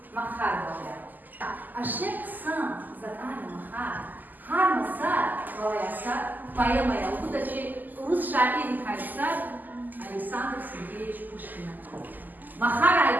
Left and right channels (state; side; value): late; left; 0.085 ms